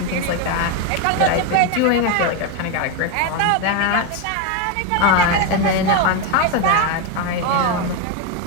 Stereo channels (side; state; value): both; different; correlation 0.02